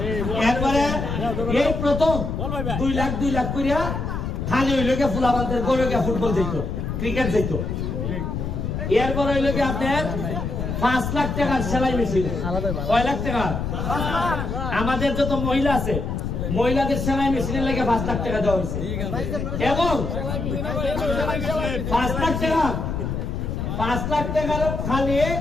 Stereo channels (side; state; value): left; noise; rumble, 3 dB below the sound